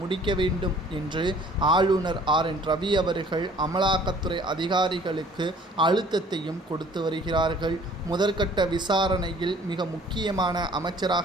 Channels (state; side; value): normal; both; correlation 0.54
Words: முடிக்க வேண்டும் என்று ஆளுநர் RN ரவி அவர்கள் அமலாக்கத்துறை அதிகாரிகளுக்கு அழுத்தத்தையும் கொடுத்து வருகிறார்கள். முதற்கட்ட விசாரணையில் மிக முக்கியமான